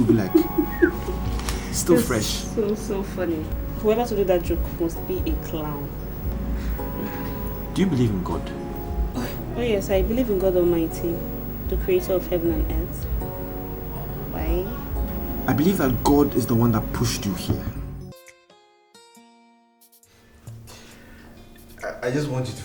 be like, still That's fresh. So funny. Whoever to do that joke must be a clown. Do you believe in God? Oh yes, I believe in God Almighty, the creator of heaven and earth. Why? I believe that God is the one that pushed you here. I just want you to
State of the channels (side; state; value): both; identical; correlation 1.00